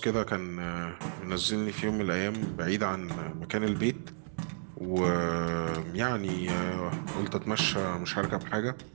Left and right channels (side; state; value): left; silent; digital silence